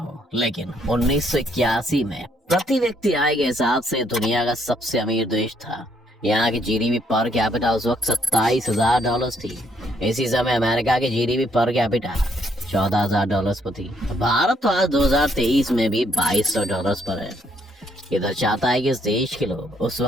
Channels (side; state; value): both; normal; correlation 0.70